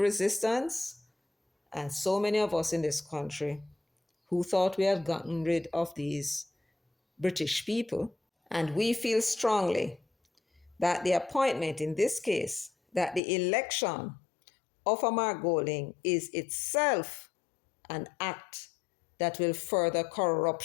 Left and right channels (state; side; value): drops out; right; at 13.2 s